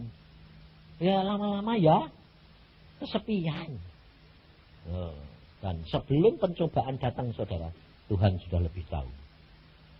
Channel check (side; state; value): both; identical; correlation 1.00